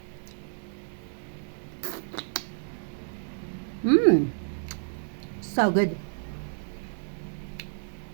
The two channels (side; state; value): left; silent; 58 dB below the other